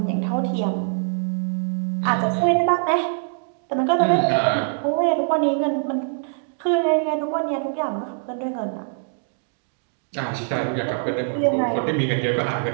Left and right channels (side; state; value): left; silent; digital silence